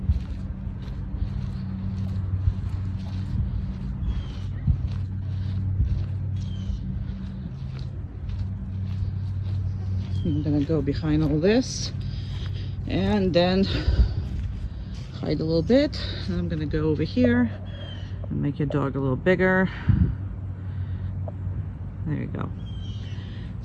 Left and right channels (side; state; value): both; identical; correlation 1.00